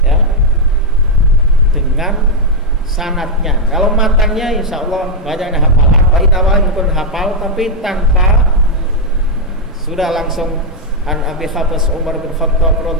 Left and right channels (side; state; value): both; normal; correlation -0.01